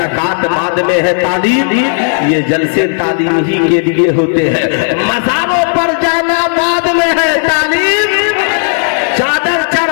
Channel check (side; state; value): right; silent; digital silence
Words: بعد میں ہے تعلیم۔ یہ جلسے تعلیم ہی کے لیے ہوتے ہیں۔ مزاروں پر جانا بعد میں ہے تعلیم، چادر